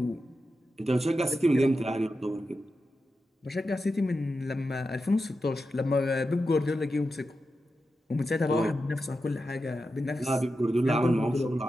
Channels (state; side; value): normal; both; correlation 0.90